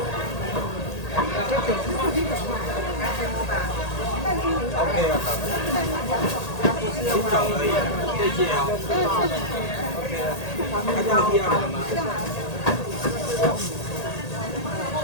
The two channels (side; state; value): right; late; 1.8 ms